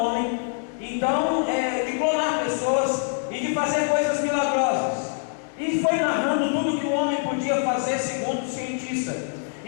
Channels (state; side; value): silent; right; 55 dB below the other